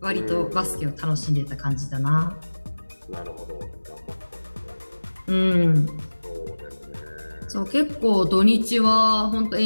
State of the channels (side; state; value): both; inverted; correlation -1.00